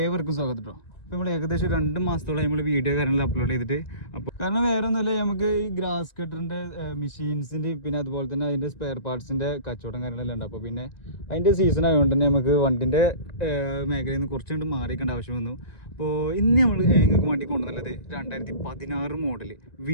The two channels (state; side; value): late; right; 1.9 ms